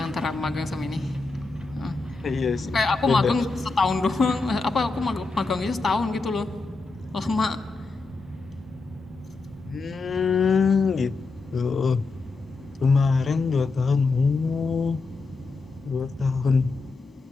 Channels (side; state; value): right; quieter; 3.9 dB